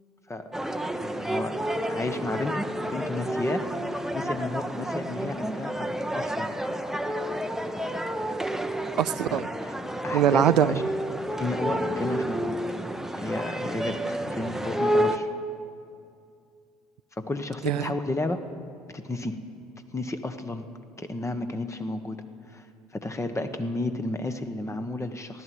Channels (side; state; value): both; normal; correlation 0.71